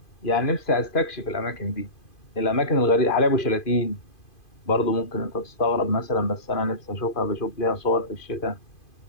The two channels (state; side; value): late; right; 2.5 ms